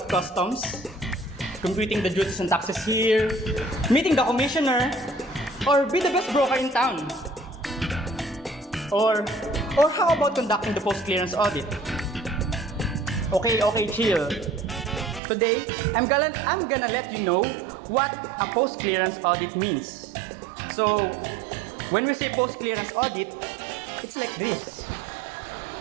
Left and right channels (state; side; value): drops out; left; at 15.2 s